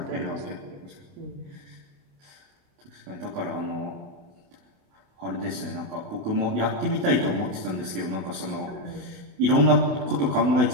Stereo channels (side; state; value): left; late; 29 ms